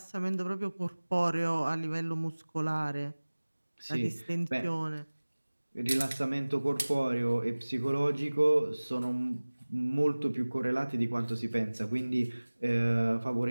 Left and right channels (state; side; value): inverted; both; correlation -1.00